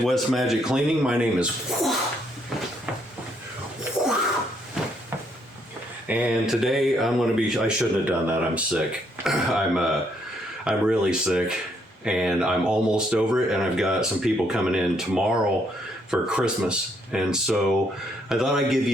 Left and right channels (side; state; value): both; normal; correlation 0.72